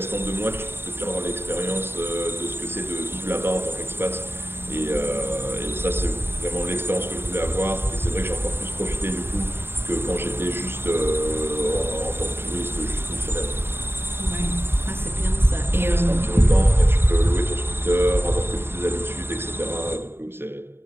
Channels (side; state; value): left; late; 0.11 ms